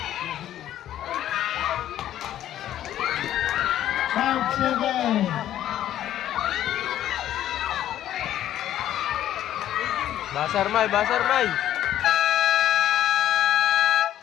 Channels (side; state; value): right; quieter; 12.0 dB